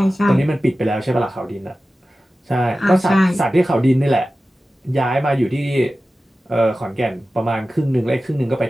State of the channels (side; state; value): both; normal; correlation 0.95